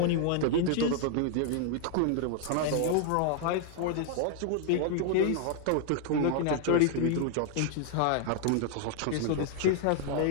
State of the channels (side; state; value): both; different; correlation 0.00